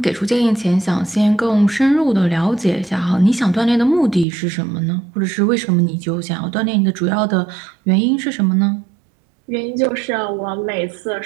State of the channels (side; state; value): left; drops out; at 4.2 s